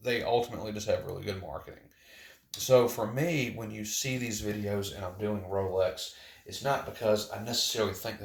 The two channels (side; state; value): both; identical; correlation 1.00